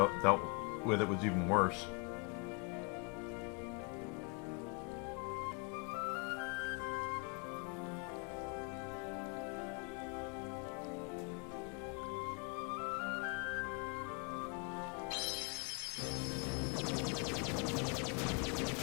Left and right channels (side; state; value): right; quieter; 33.1 dB